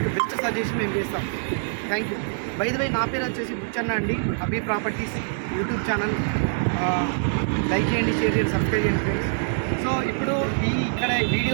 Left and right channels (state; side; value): silent; left; digital silence